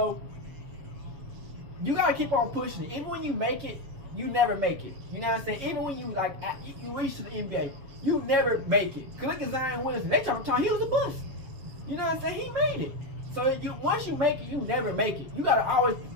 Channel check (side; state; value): left; late; 7.4 ms